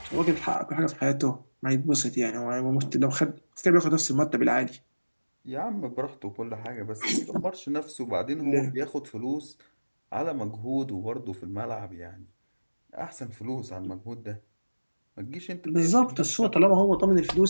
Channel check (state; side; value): inverted; both; correlation -1.00